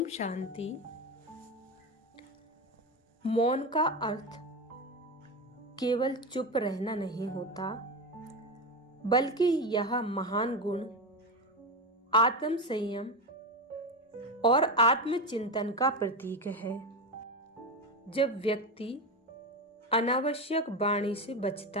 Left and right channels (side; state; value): both; normal; correlation 0.17